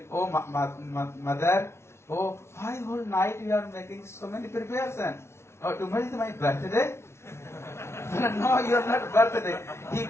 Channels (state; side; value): late; right; 0.13 ms